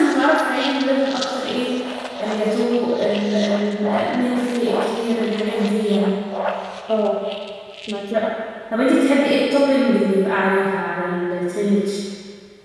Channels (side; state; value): both; identical; correlation 1.00